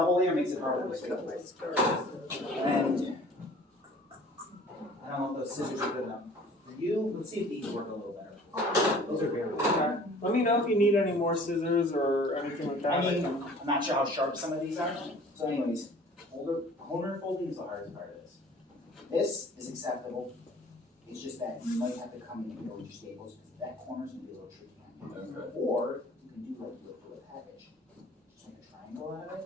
layer makes it harder I'm to gonna cut my switch. stars. And I don't know if those scissors are good enough for you. Let's see if these work a little better. Those are very good. Let me know if you need any more scissors or anything like that. I mean, I'm not sure how sharp some of these are. So anyways, corner folding is the hardest part of this. This is acceptable. It's just that you might have to come in here with your staples because that corner's gonna be a little tricky. Okay. Or you can do like you would for a package. Just make a triangle out of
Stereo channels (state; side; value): normal; both; correlation 0.49